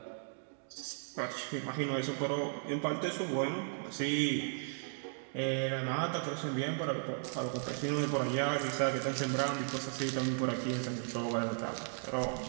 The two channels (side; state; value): left; silent; digital silence